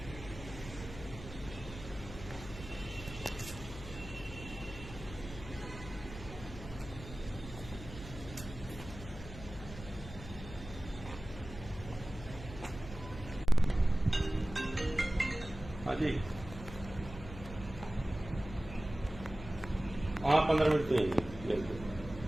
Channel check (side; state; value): left; noise; hum, 12 dB below the sound